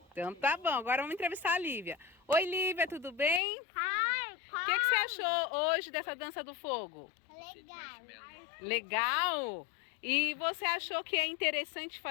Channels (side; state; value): right; drops out; at 3.4 s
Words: Então tá bom, agora vamos entrevistar a Lívia. Oi, Lívia, tudo bem? O que você achou hoje dessa dança do fogo? Legal. Legal? E você achou que é interessante